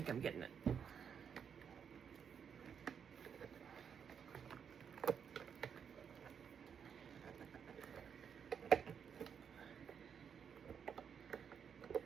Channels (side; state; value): left; quieter; 7.3 dB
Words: I'm getting it.